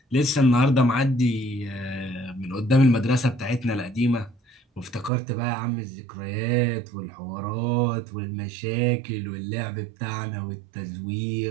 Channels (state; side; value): drops out; left; at 5.1 s